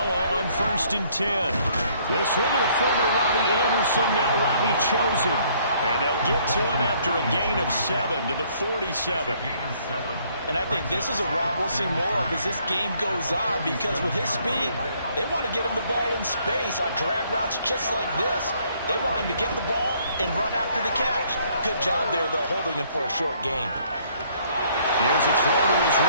on 1st and 10. This one to the former Robbie Anderson, now Robbie Chosen. And they'll get to him after a gain of 7 to the 47. And I think this is a route we'll see more of as this game goes on, because with his speed, they want to get him the ball in space on drag routes just like this. They want him to get the ball and run after the catch. Good job there, though, holding him for a short gain. Here's a throw to his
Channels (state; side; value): inverted; both; correlation -0.64